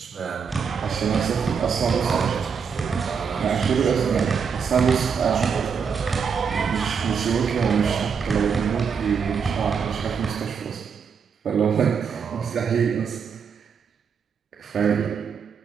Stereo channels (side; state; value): left; quieter; 6.4 dB